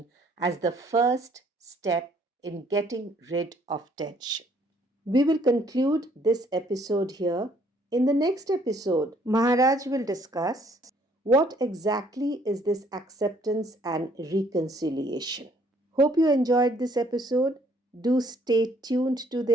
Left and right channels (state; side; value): normal; both; correlation 0.63